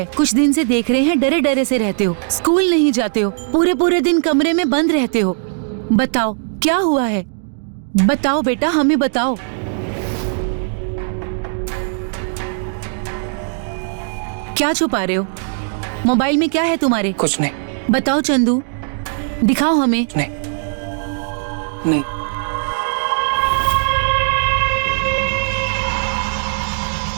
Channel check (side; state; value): left; silent; 67 dB below the other